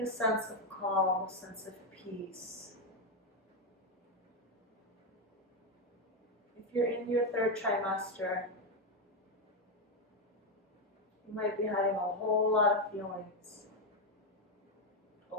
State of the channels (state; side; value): normal; both; correlation 0.06